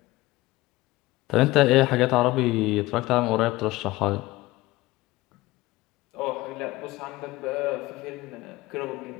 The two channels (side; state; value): right; quieter; 19.0 dB